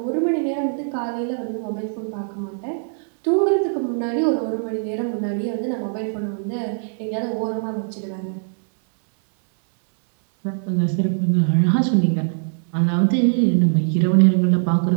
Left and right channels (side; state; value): left; silent; digital silence